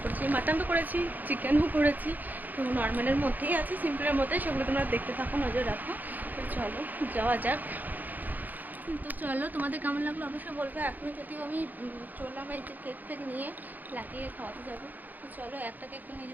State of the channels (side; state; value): left; late; 0.084 ms